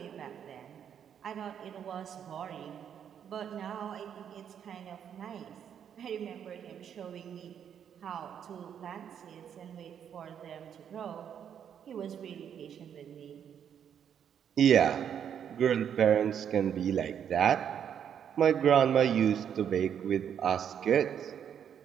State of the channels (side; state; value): left; quieter; 8.6 dB